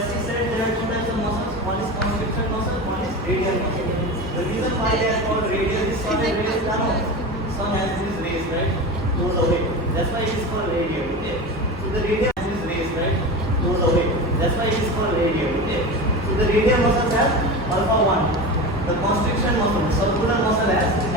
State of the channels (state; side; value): normal; both; correlation 0.27